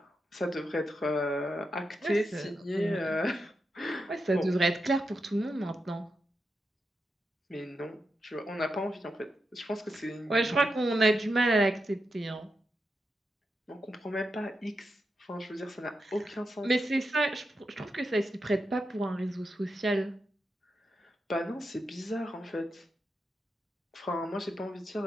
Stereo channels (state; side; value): normal; both; correlation 0.87